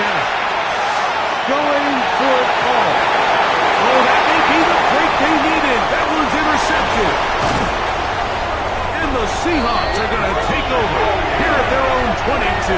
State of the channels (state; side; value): identical; both; correlation 1.00